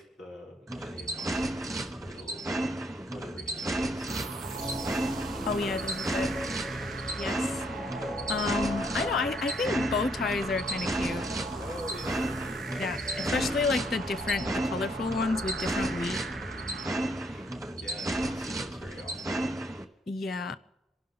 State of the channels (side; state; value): both; normal; correlation 0.69